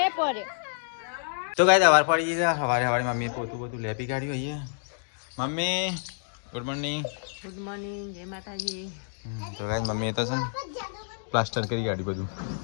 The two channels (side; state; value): right; silent; digital silence